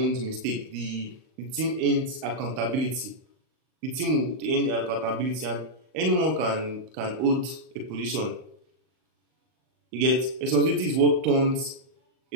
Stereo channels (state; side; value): late; left; 38 ms